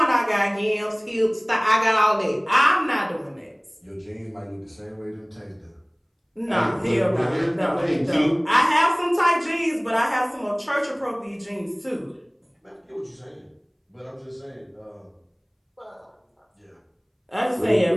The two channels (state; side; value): identical; both; correlation 1.00